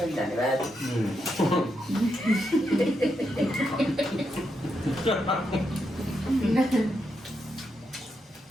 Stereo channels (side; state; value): both; normal; correlation 0.83